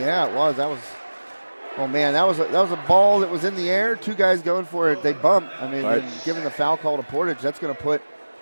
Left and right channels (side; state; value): both; inverted; correlation -1.00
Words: it was. That was. Oh man, that was a ball that was in the air. Two guys going for it. They bump. I mean, Right. and given the foul call to Portage, that's going to put